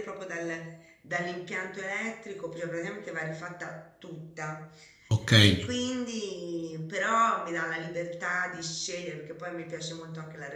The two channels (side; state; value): both; identical; correlation 1.00